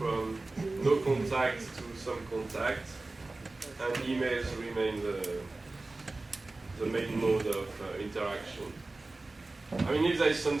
no contact to some contact. And emails remain the main mode of interaction. I mean, if there is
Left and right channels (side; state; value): left; quieter; 3.2 dB